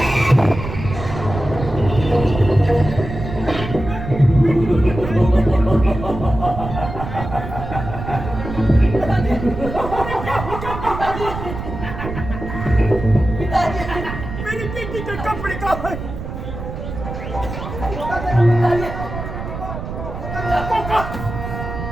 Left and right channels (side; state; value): right; noise; rumble, 8 dB below the sound